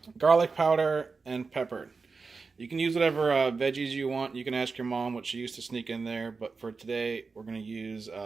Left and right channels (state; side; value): quieter; left; 4.5 dB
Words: garlic powder, and pepper. You can use whatever veggies you want. You can ask your mom what she used to sneak in there, but for today we're going to use